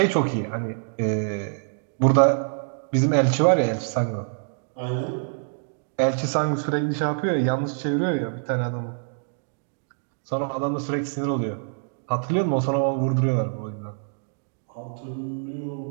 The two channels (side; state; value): left; silent; digital silence